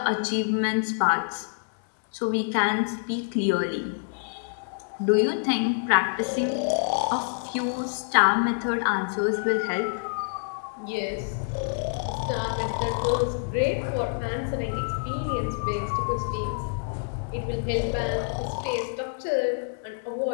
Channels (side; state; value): right; silent; digital silence